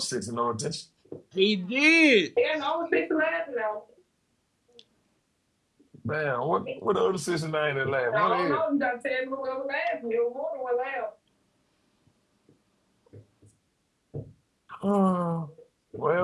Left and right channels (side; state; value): both; identical; correlation 1.00